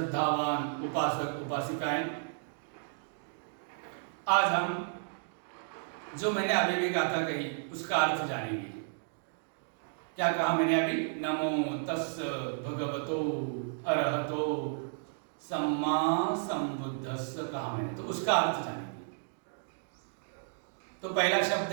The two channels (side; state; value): left; silent; digital silence